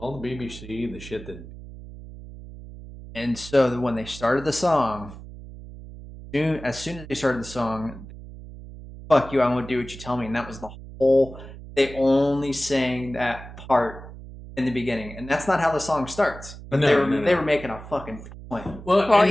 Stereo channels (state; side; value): noise; right; hum, 14 dB below the sound